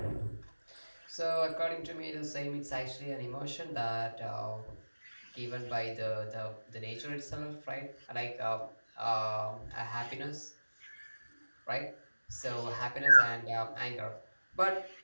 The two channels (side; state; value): both; inverted; correlation -1.00